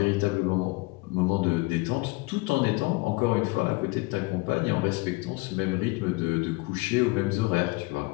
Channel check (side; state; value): right; quieter; 24.5 dB